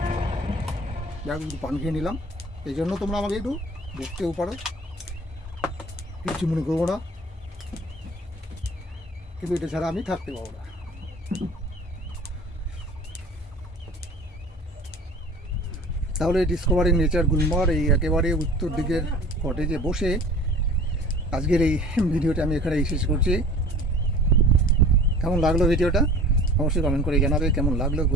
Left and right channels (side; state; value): both; normal; correlation 0.44